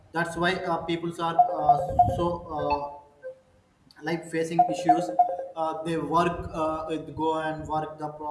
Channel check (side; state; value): both; identical; correlation 1.00